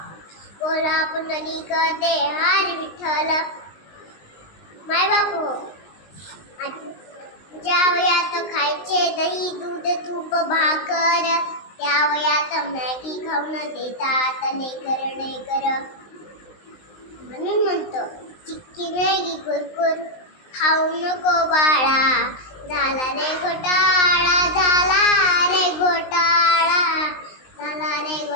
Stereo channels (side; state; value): right; late; 19 ms